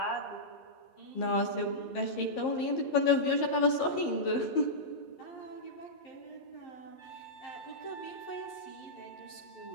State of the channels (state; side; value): late; right; 11 ms